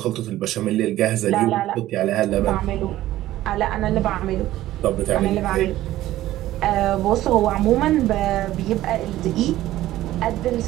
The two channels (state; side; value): quieter; left; 14.8 dB